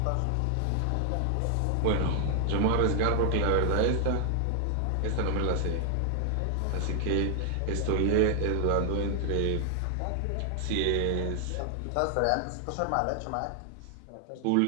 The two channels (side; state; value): both; different; correlation 0.00